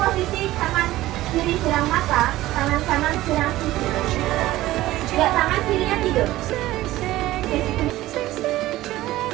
tangan kiri sirang mata, tangan kanan sirang susu. Ya, tangan kirinya tidur.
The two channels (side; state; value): left; quieter; 16.3 dB